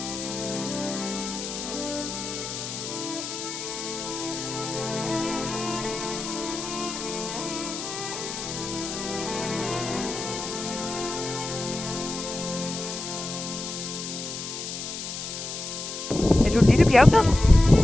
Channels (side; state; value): left; noise; hiss, 7 dB below the sound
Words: Er du en lille bjergbed? Det